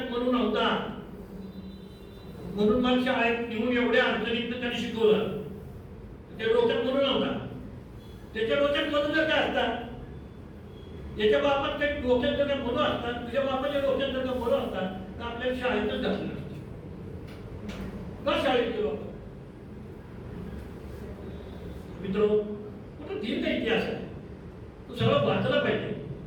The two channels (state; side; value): identical; both; correlation 1.00